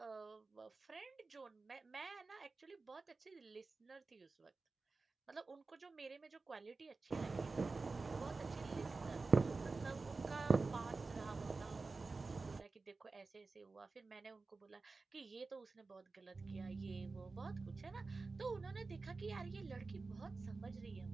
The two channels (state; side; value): quieter; left; 3.9 dB